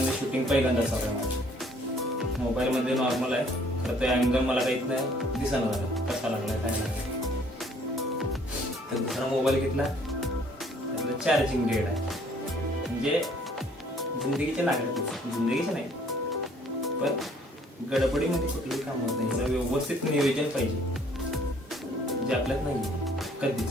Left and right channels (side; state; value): both; normal; correlation 0.59